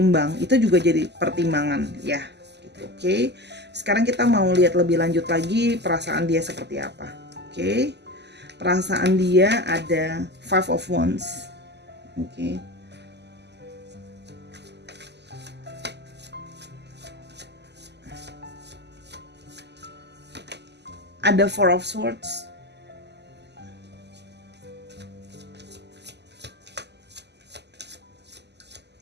itu juga jadi pertimbangan ya gitu. Oke. Sekarang kita mau lihat lebih lanjut lagi perasaan dia seperti apa. Oke. Perasaan dia ada Five of Wands. Oke. Ada Four of Swords.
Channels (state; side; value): late; left; 0.50 ms